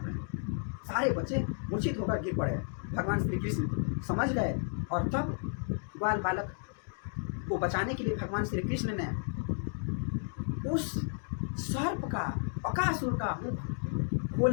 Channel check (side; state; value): right; silent; 56 dB below the other